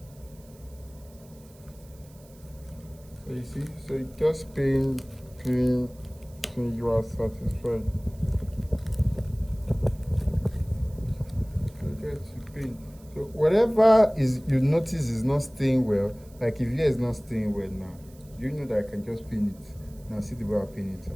So you see, so you just pin, you are satisfied. So you pin. So whatever is you notice is not staying well, like if here is not staying well now, you know that I can just pin it. Now see the way I pin it,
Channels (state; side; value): noise; right; hiss, 27 dB below the sound